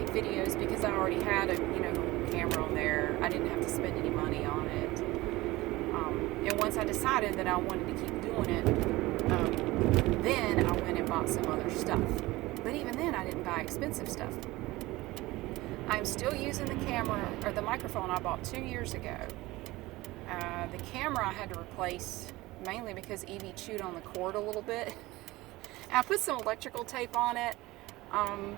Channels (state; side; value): quieter; left; 19.6 dB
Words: videos because I already had a camera on there. I didn't have to spend any money on it. And once I decided that I wanted to keep doing it, then I went and bought some other stuff. But even then, I didn't buy expensive stuff. I'm still using the camera, or the microphone I bought 2 years ago. The camera I had to replace mainly because Evie chewed on the cord a little bit. I put some electrical tape on it,